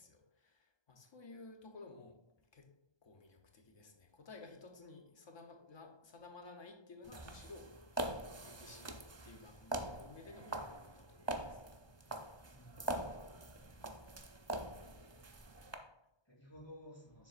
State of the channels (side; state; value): right; late; 1.2 ms